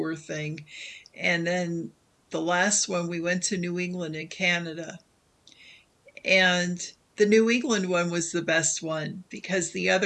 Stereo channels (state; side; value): identical; both; correlation 1.00